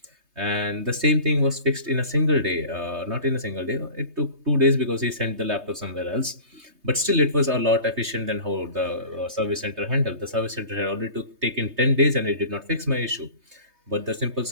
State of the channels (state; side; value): late; left; 3.2 ms